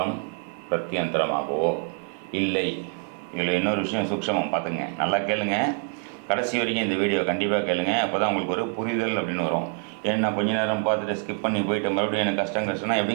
பிரத்யந்தரமாகவோ இல்லை. இதில் இன்னொரு விஷயம் சூக்ஷமம் பார்த்துங்க, நல்லா கேளுங்க, கடைசி வரைக்கும் இந்த வீடியோ கண்டிப்பாக கேளுங்க. அப்போ தான் உங்களுக்கு ஒரு புரிதல் அப்படின்னு வரும். ஏன்னா கொஞ்ச நேரம் பார்த்துட்டு ஸ்கிப் பண்ணி போயிட்டு மறுபடியும் எனக்கு கஷ்டம்னா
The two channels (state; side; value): quieter; left; 37.9 dB